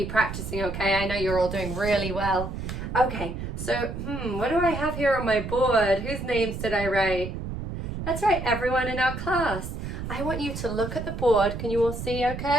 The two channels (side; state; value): right; noise; rumble, 6 dB below the sound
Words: practicing, okay? I know you're all doing really well. Okay, so, what do I have here on my board? Whose names did I write? That's right, everyone in our class. I want you to look at the board. Can you all see,